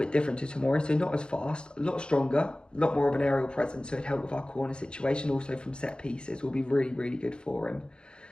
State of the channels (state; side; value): late; right; 0.051 ms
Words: different to Tomori, so not as fast, a lot stronger, a lot more of an aerial presence, so it'd help with our corner situation. Also from set pieces will be really, really good for him.